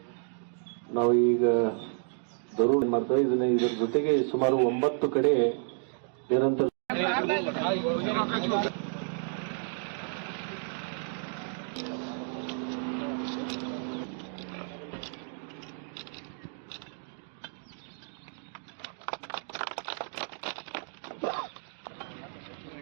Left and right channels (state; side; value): silent; left; 57 dB below the other